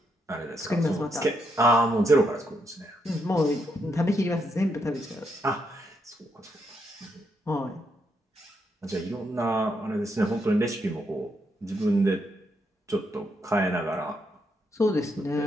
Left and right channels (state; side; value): normal; both; correlation 0.79